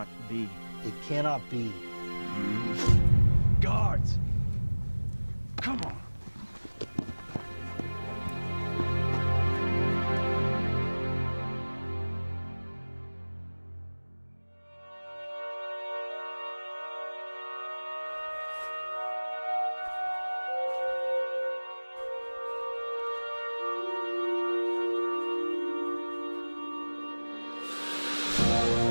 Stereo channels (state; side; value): inverted; both; correlation -1.00